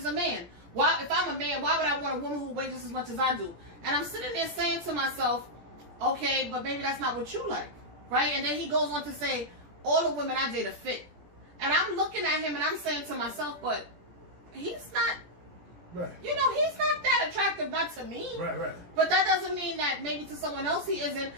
a man. Why, if I'm a man, why would I want a woman who weighs just as much as I do? And I'm sitting there saying to myself, okay, but maybe that's not what you like, right? And then he goes on to say, all the women I date are fit. And I'm looking at him and I'm saying to myself, but he's not, Right. you know, he's not that attractive, not to me. Right, right. But that doesn't mean that maybe to someone else he isn't.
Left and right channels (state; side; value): late; left; 17 ms